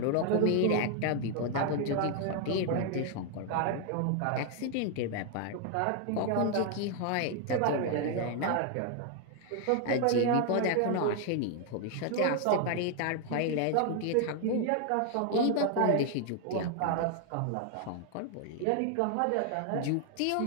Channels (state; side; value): different; both; correlation 0.00